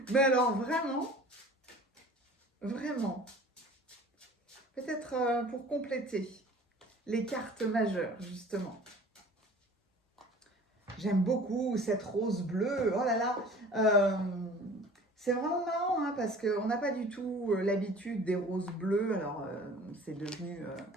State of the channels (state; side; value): normal; both; correlation 0.46